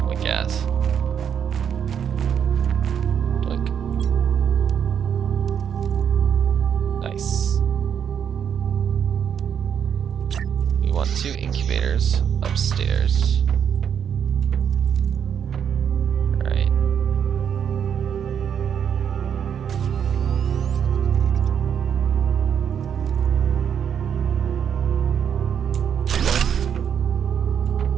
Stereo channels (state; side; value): quieter; left; 8.1 dB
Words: with gas. Look. Nice. We want 2 incubators upstairs. Right.